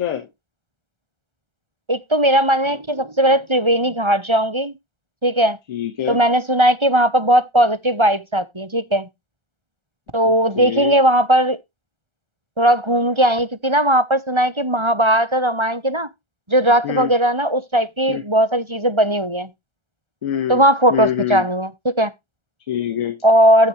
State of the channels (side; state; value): left; late; 1.3 ms